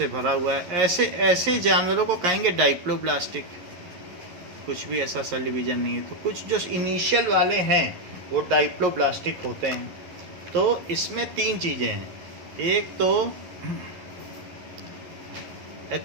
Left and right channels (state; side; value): late; left; 11 ms